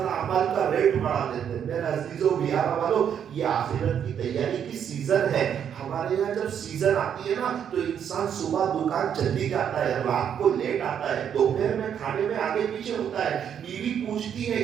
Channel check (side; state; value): left; quieter; 8.6 dB